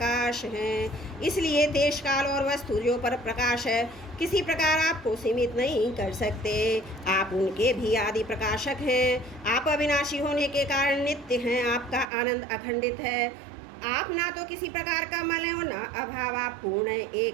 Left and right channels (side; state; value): left; drops out; at 12.1 s